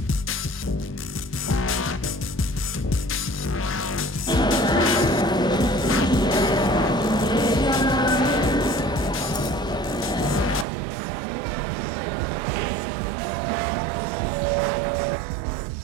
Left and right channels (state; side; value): drops out; left; at 10.7 s